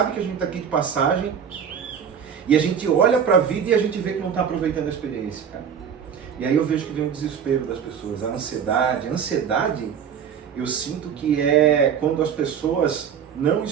que a gente está aqui de passagem e a gente olha para a vida e a gente vê que não está aproveitando a experiência, cara. E aí eu vejo que vem o desespero das pessoas, a ansiedade. A ansiedade, eu sinto que é quando as pessoas não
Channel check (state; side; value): quieter; left; 7.7 dB